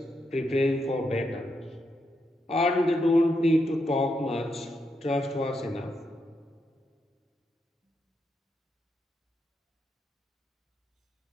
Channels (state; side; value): normal; both; correlation 0.82